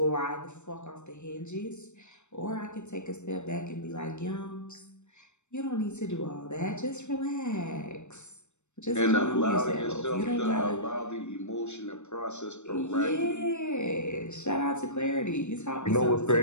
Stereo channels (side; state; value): right; late; 0.83 ms